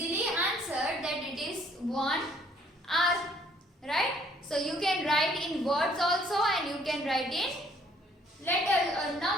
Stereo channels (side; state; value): both; normal; correlation 0.62